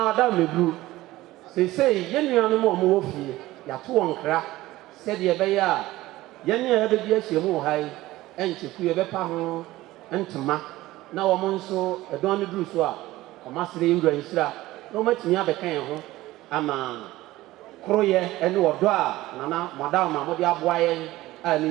wadaw meguru sei ye nuanu mo wo fie ya to wonkra se de be ya ye ne ya be bi ahyemu hai encheku ye bepa ho ntoma na wo mo nso edon ne duru so a omasere yewura nhira na omatimi abekan ho ama kroye ene wodo a nana madam ma mo de aboa ye a ne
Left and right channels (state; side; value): quieter; left; 17.2 dB